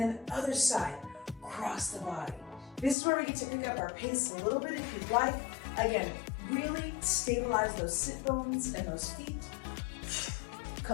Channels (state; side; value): drops out; right; at 3.0 s